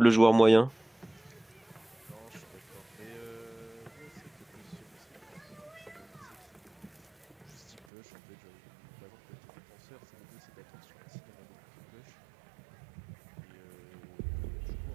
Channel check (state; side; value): drops out; left; at 7.9 s